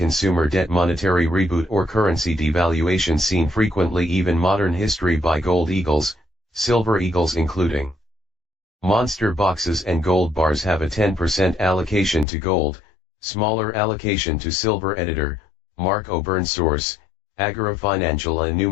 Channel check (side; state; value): right; drops out; at 12.2 s